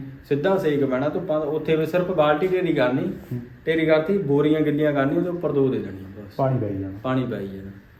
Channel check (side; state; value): both; identical; correlation 1.00